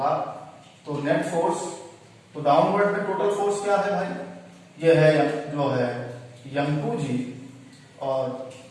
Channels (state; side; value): identical; both; correlation 1.00